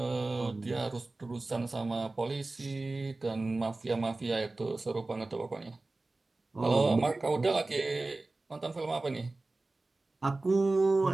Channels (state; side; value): quieter; left; 3.2 dB